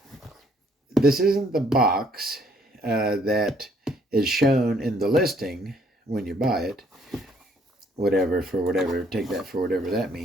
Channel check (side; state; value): both; normal; correlation 0.65